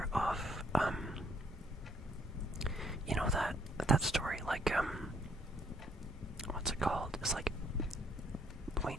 of you know that story, like what's it called? It's like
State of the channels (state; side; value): normal; both; correlation 0.66